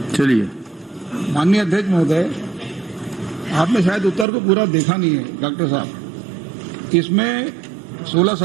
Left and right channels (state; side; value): drops out; left; at 4.2 s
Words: चलिए। माननीय अध्यक्ष महोदय, आपने शायद उत्तर को पूरा देखा नहीं है डॉक्टर साहब। इसमें 16,